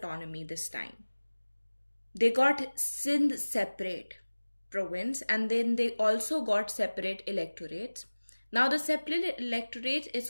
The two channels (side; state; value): both; inverted; correlation -1.00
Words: this time. They got Sindh separate province and then they also got separate electorates. Now the separate electorate is